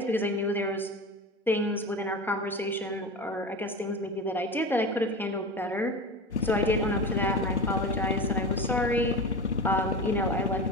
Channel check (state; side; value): normal; both; correlation 0.27